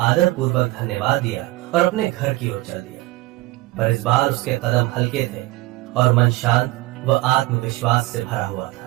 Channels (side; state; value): left; quieter; 19.1 dB